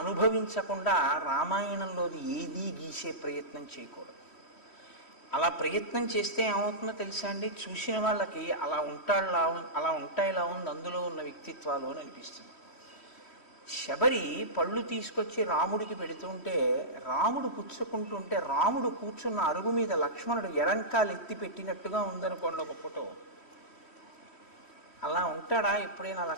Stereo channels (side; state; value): right; late; 3.1 ms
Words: అనుభవించకుండా రామాయణంలోది ఏదీ గీసే ప్రయత్నం చేయకూడదు. అలా ప్రయత్నం చేస్తే ఏమవుతుందో తెలుసా అండి? చూసిన వాళ్ళకి అలా ఉంటాయిలా ఉంది అందులో ఉన్న వ్యక్తిత్వాలు అని అనిపిస్తుంది. శబరి పళ్ళు తీసుకొచ్చి రాముడికి పెడుతుంటే రాముడు పుచ్చుకుంటుంటే రాముడు కూర్చున్న అరుగు మీద లక్ష్మణుడు ఎడంకాలు ఎత్తి పెట్టినట్టుగా ఉందనుకోండి ఒక ఫోటో. అలా ఉంటాడా ఎప్పుడైనా